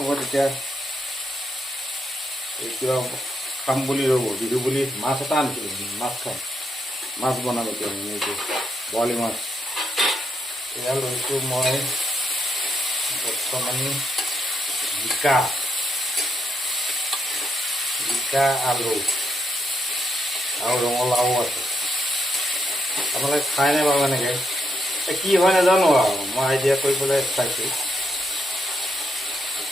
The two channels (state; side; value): normal; both; correlation 0.80